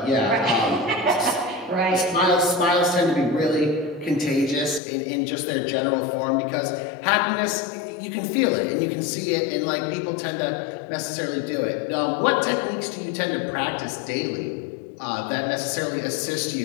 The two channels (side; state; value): right; drops out; at 4.8 s